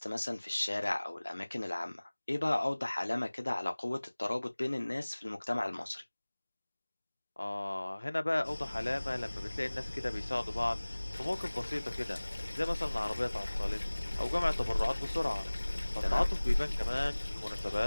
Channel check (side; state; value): both; inverted; correlation -1.00